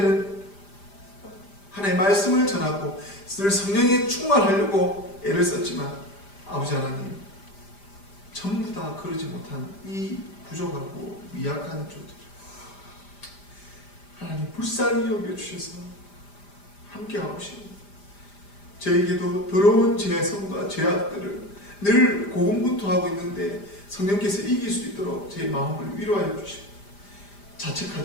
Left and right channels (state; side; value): late; right; 5.0 ms